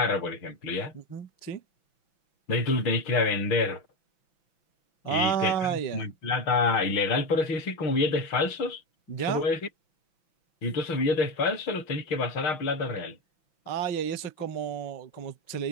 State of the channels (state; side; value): late; right; 5.9 ms